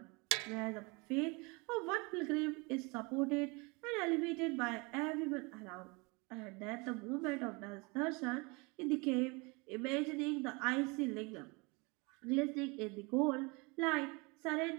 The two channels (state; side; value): quieter; left; 28.3 dB